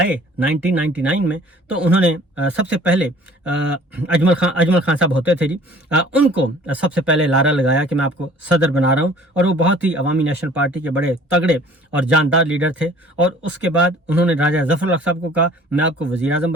1999 میں تو انہوں نے سب سے پہلے اجمل خان صاحب ہوتے تھے جی، ان کو سب سے پہلے لارا لگایا کہ میں آپ کو صدر بنا رہا ہوں، اور وہ بہت ہی عوامی نیشنل پارٹی کے بڑے تگڑے اور جاندار لیڈر تھے۔ اور اس کے بعد انہوں نے راجہ ظفر الحق صاحب کو کہا میں آپ کو وزیر اعظم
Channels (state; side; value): normal; both; correlation 0.51